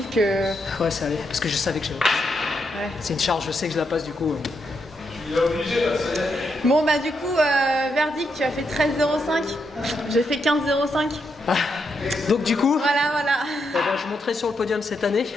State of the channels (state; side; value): normal; both; correlation 0.81